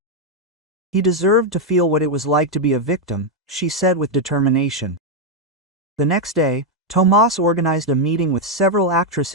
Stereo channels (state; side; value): normal; both; correlation 0.02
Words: He deserved to feel what it was like to be a victim," she said with determination. The next day, Tomas organized a meeting with several